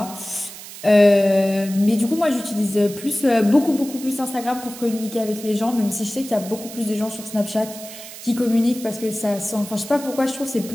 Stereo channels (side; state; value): right; noise; hiss, 14 dB below the sound